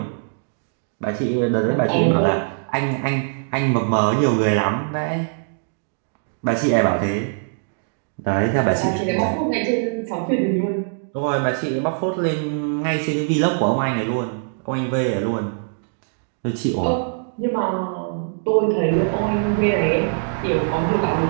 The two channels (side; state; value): left; silent; digital silence